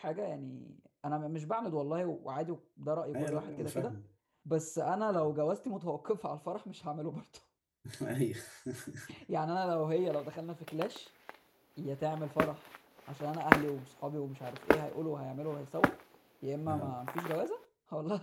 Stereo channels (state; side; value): identical; both; correlation 1.00